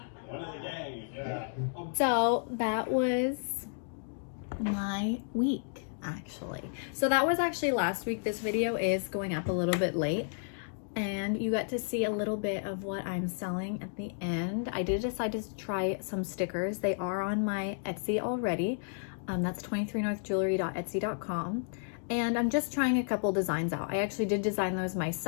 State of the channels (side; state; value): right; silent; digital silence